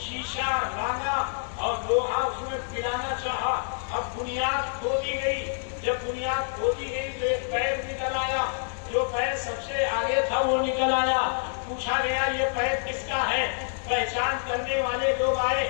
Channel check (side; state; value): right; silent; digital silence